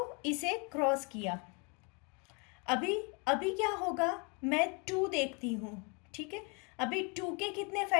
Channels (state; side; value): quieter; right; 32.5 dB